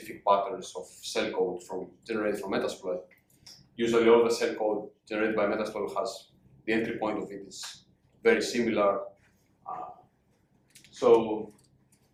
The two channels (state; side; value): identical; both; correlation 1.00